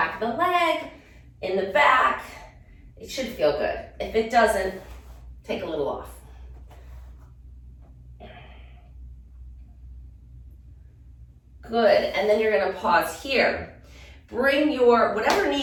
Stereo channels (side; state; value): both; identical; correlation 1.00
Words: of the leg, in the back. It should feel good. If it doesn't, take a little off. Good, and then you're gonna pause here. Bring your, whatever